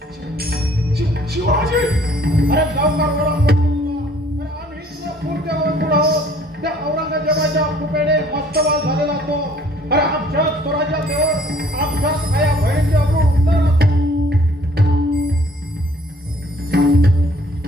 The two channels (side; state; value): both; normal; correlation 0.58